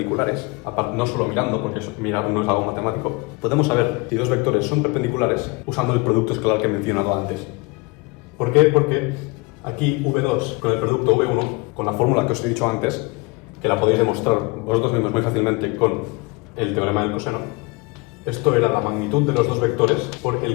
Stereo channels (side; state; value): right; quieter; 26.5 dB